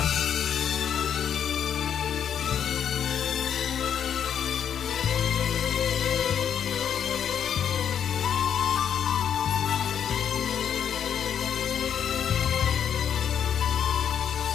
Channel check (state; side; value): quieter; right; 8.6 dB